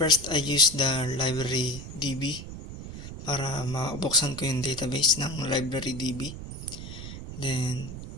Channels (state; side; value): noise; right; rumble, 10 dB below the sound